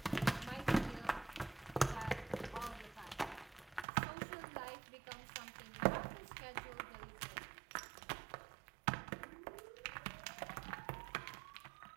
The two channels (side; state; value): left; drops out; at 3.9 s